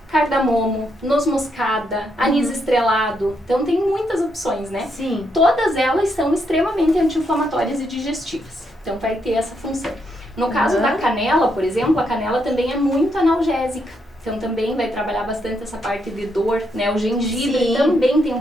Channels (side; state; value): both; normal; correlation 0.78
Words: cardamomo, noz moscada, anis estrelado. Então, tem muitas opções, né? Sim. Todas elas são extremamente anti-inflamatórias e digestivas. Então, vai ter essa função. No caso da canela, por exemplo, a canela também é muito analgésica. Então também vai trabalhar bastante essa parte de dor, né? O gengibre também tem um